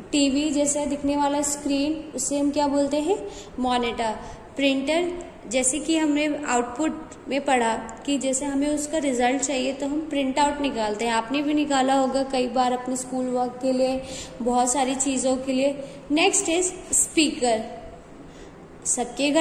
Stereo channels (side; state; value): both; identical; correlation 1.00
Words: टीवी जैसा दिखने वाला स्क्रीन, उसे हम क्या बोलते हैं? मॉनिटर। प्रिंटर जैसे कि हमने आउटपुट में पढ़ा कि जैसे हमें उसका रिजल्ट चाहिए तो हम प्रिंट आउट निकालते हैं। आपने भी निकाला होगा कई बार अपने स्कूल वर्क के लिए, बहुत सारी चीज़ों के लिए। Next is speaker. सबके